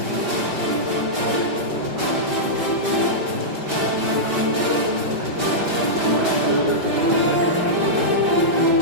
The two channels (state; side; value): late; left; 5.2 ms